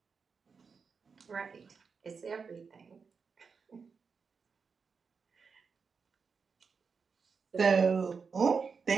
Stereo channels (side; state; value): left; quieter; 5.4 dB